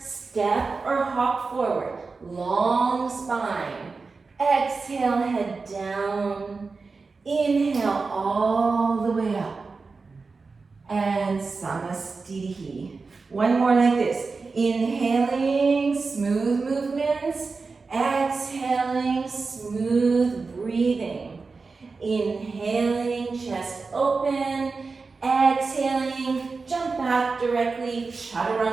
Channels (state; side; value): quieter; left; 4.3 dB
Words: or hop forward. Long spine. Exhale, head down. Inhale all the way up. And Samastitihi. One more like this. Inhaling, smooth movements. Exhaling, smooth breathing. Inhaling, chest open. Exhaling, jump back directly,